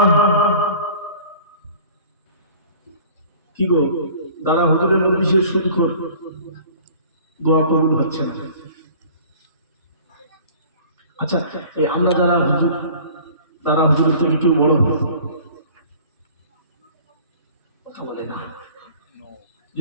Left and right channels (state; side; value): inverted; both; correlation -0.47